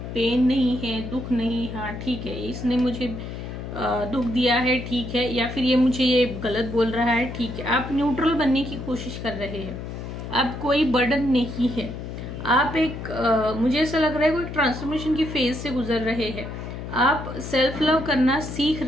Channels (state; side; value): noise; left; hum, 8 dB below the sound